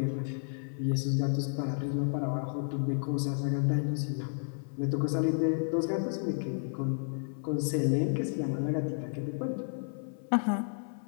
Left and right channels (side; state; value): right; silent; 57 dB below the other